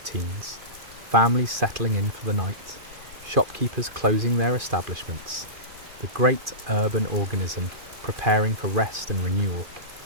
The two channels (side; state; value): left; late; 2.5 ms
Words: families settling in for the night, shopkeepers closing their establishments, the great urban organism preparing for rest and renewal.